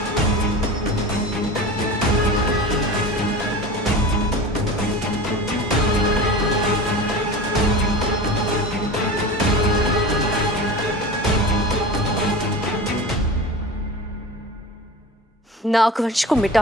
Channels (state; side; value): normal; both; correlation 0.32